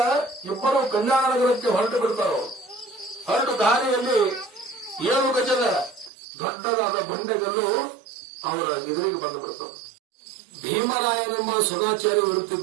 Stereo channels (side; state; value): left; drops out; at 6.1 s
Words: ಇಬ್ಬರು ಕಲ್ಯಾಣ ನಗರಕ್ಕೆ ಹೊರಟು ಬಿಡ್ತಾರ. ಹೊರಟು ದಾರಿಯಲ್ಲಿ 7 ಗಜದ ದೊಡ್ಡದಾದ ಬಂಡೆಗಲ್ಲು ಅವರ ಎದುರಿಗೆ ಬಂದು ಬಿಡ್ತದೆ. ಭೀಮರಾಯನೆಂಬ ಸದಾಚಾರಿ